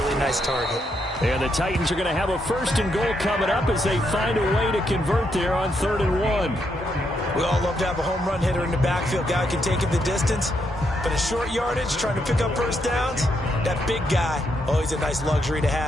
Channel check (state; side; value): normal; both; correlation 0.78